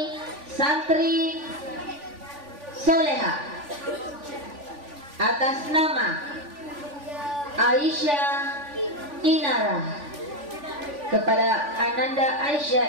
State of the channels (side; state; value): left; late; 3.5 ms